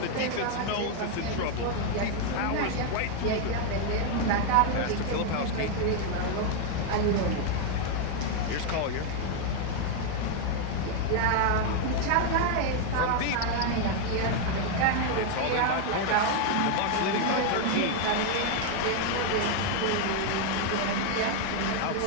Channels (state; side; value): different; both; correlation 0.01